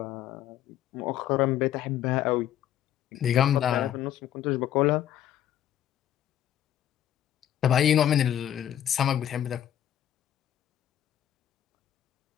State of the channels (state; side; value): quieter; right; 11.1 dB